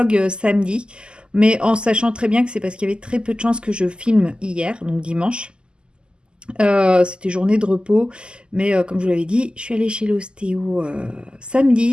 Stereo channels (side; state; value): left; late; 0.049 ms